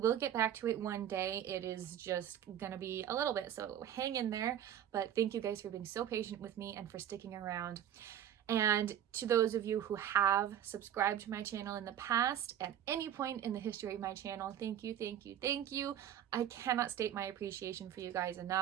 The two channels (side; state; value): left; quieter; 10.6 dB